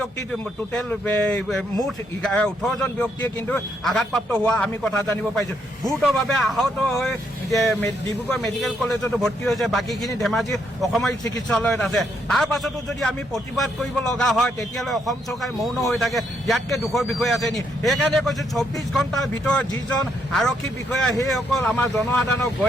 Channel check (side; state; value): both; normal; correlation 0.75